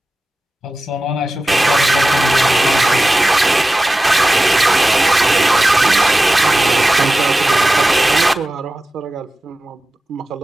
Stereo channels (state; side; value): normal; both; correlation 0.95